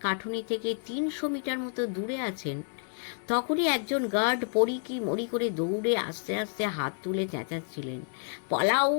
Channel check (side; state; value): right; silent; 58 dB below the other